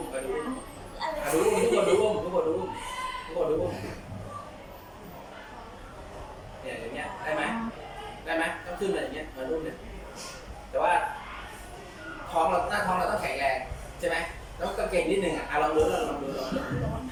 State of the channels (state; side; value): identical; both; correlation 1.00